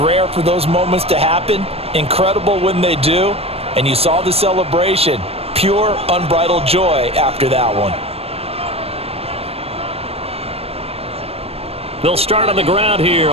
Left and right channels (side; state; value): left; late; 0.29 ms